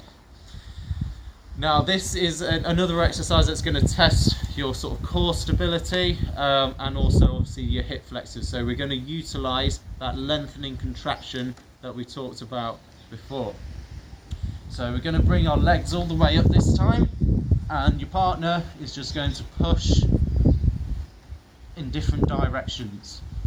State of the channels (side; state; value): both; identical; correlation 1.00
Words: Now this is another exercise that's going to test your sort of core stability and also obviously your hip flexors. So we're going to utilize that lengthening contraction that we talked about before. So we're going to bring our legs all the way up this time, and your partner is just going to push in different directions.